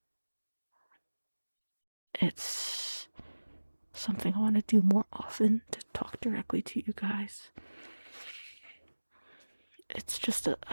It's something I want to do more often, to talk directly to you guys. It's just a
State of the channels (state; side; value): inverted; both; correlation -1.00